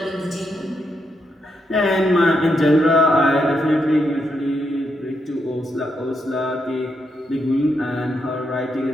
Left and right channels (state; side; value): normal; both; correlation 0.81